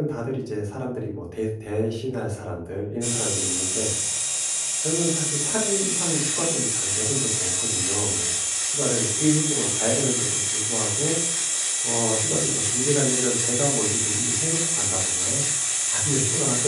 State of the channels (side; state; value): both; identical; correlation 1.00